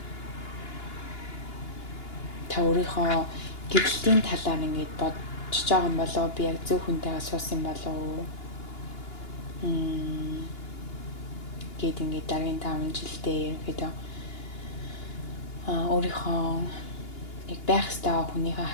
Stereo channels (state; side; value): late; right; 2.8 ms